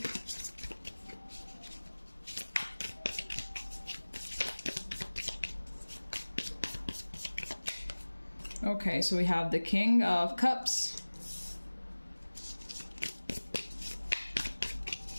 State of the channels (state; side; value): inverted; both; correlation -1.00